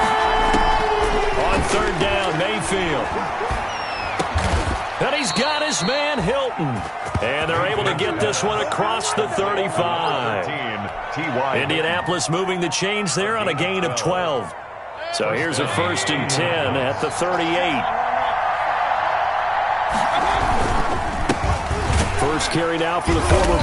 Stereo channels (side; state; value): both; identical; correlation 1.00